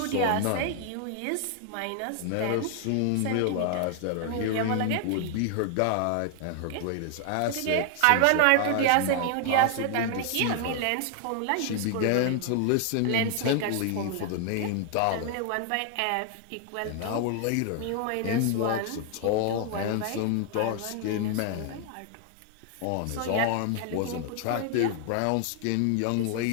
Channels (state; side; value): different; both; correlation 0.00